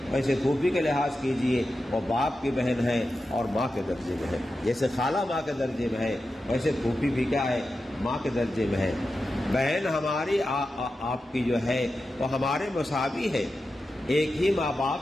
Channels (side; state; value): both; normal; correlation 0.91